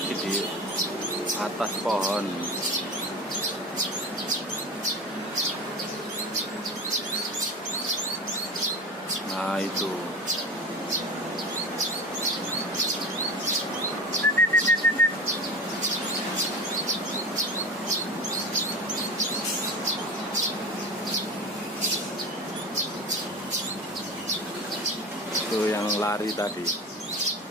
di atas pohon. Nah itu. Itu yang lari tadi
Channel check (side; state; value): both; normal; correlation 0.30